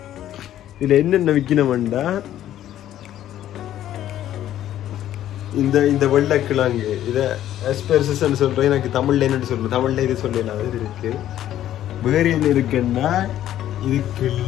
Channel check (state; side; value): quieter; right; 12.1 dB